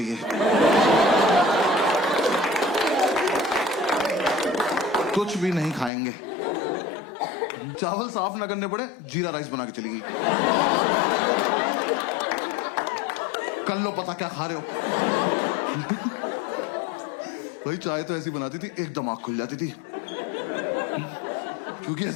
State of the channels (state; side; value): drops out; right; at 5.9 s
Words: कुछ भी नहीं खाएंगे, चावल साफ ना करने पड़े, जीरा राइस बना के चली गई। कर लो पता क्या खा रहे हो। भाई चाय तो ऐसी बनाती थी एकदम आंख खुल जाती थी, क्योंकि